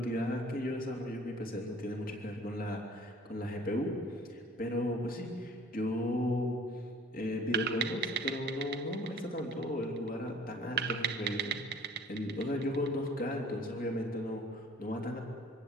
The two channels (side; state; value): both; normal; correlation 0.52